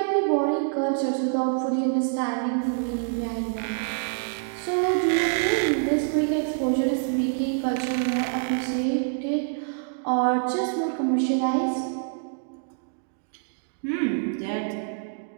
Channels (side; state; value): left; silent; digital silence